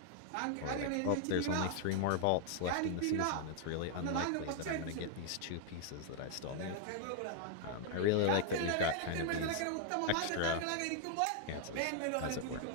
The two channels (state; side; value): different; both; correlation 0.00